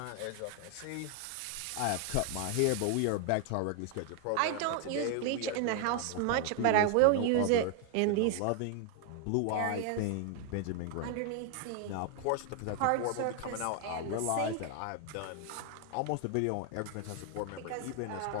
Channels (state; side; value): different; both; correlation 0.00